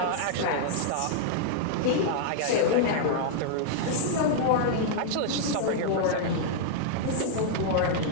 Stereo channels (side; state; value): both; different; correlation -0.01